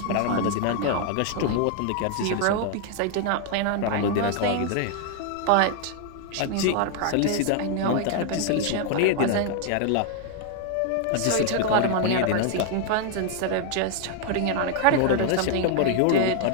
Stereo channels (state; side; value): different; both; correlation 0.00